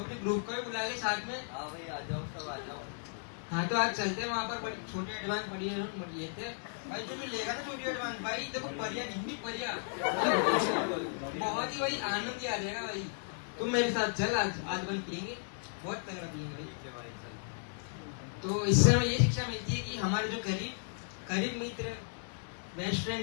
ग्रुप को भी बुला ले साथ में। हाँ भाई, आ जाओ, सब आ जाओ। हाँ तो आज चलते हैं वहाँ पर छोटी एडवांस पड़ी है लेते भाई जो भी लेगा ना छोटी एडवांस भाई देखो परिया जितनी परिया बहुत ही भाई आनंद आ जाएगा भाई। तुम मेरे साथ चल आज बन पियेंगे बहुत तगड़ा पियेंगे भाई। तो इससे हमें ये शिक्षा मिलती है कि हमारे जो करीब मित्र बेस्ट फ्रेंड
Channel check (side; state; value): right; silent; digital silence